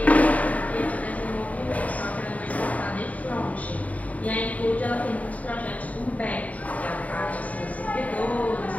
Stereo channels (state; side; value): late; right; 0.070 ms